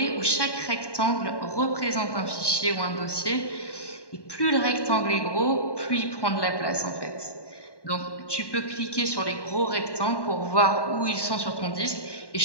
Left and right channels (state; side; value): late; right; 1.1 ms